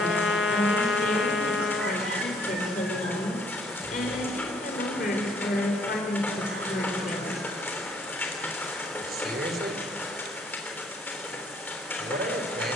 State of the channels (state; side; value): normal; both; correlation 0.64